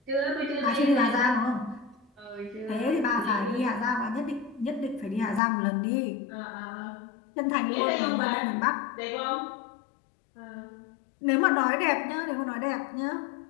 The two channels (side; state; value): right; drops out; at 5.4 s